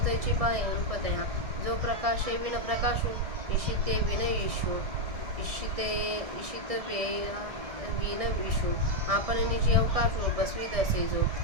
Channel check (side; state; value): left; late; 1.6 ms